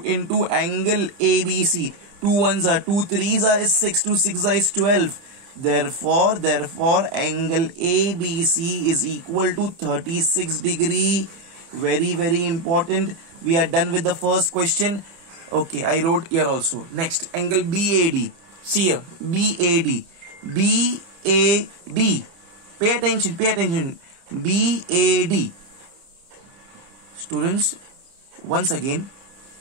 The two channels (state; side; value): late; left; 30 ms